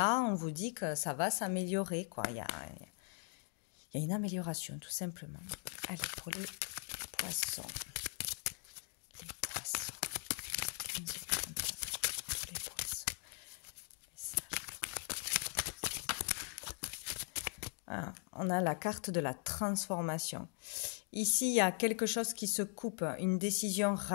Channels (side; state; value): right; quieter; 35.4 dB